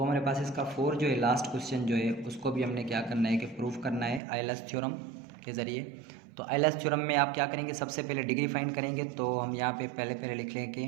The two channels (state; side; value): drops out; left; at 4.2 s